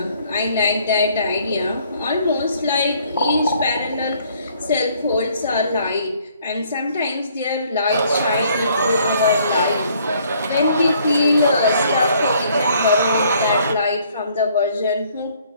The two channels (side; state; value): both; inverted; correlation -0.63